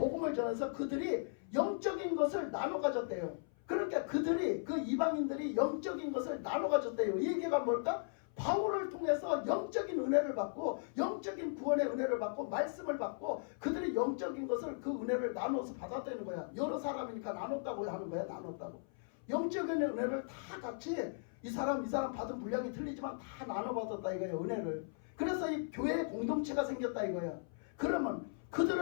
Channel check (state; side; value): silent; right; 53 dB below the other